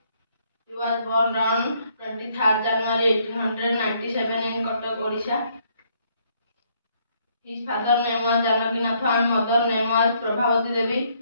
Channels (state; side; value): inverted; both; correlation -0.69